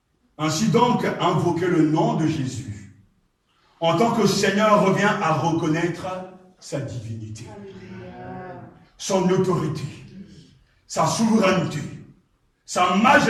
Ainsi donc, invoquer le nom de Jésus en tant que Seigneur revient à reconnaître sa divinité, son autorité, sa souveraineté, sa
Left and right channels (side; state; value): both; identical; correlation 1.00